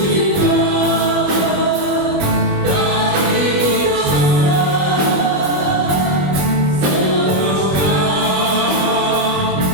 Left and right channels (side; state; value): left; late; 21 ms